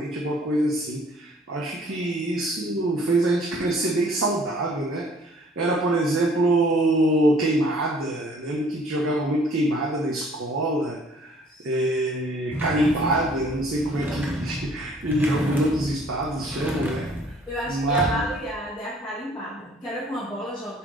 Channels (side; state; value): both; normal; correlation 0.57